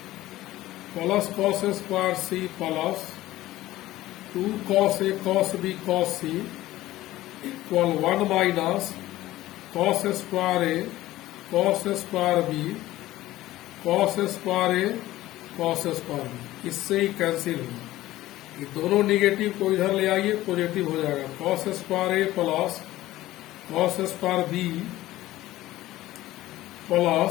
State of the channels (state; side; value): quieter; right; 16.0 dB